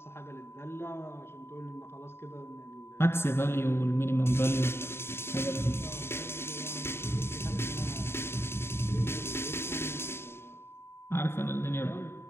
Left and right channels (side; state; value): right; late; 0.12 ms